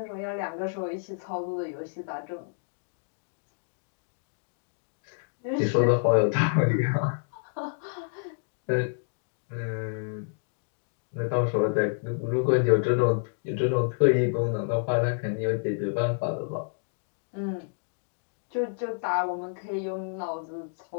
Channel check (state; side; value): silent; right; digital silence